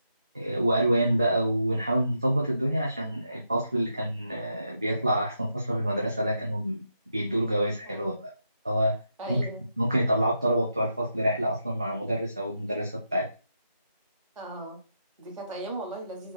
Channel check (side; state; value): both; inverted; correlation -0.84